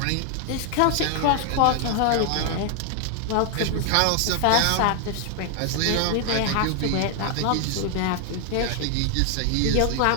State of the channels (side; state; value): both; different; correlation 0.00